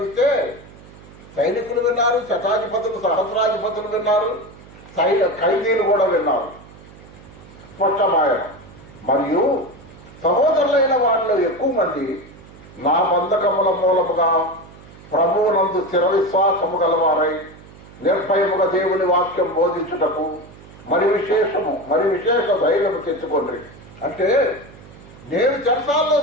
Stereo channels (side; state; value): right; noise; hum, 21 dB below the sound